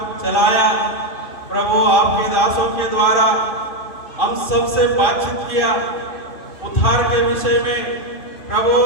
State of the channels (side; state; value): right; late; 2.5 ms